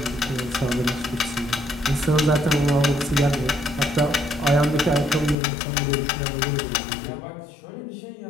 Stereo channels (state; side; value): drops out; right; at 5.4 s